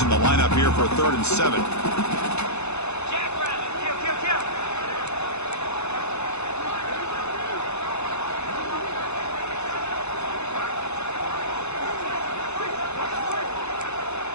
the lineup here for 3rd and 7.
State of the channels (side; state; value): right; late; 0.81 ms